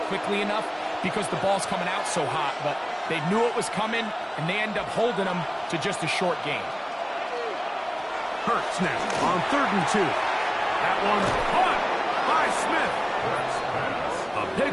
quickly enough because the ball's coming out so hot. But they knew it was coming, and they end up holding them to just a short gain. Hurts now on 3rd and 2. That one's caught by Smith. A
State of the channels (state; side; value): identical; both; correlation 1.00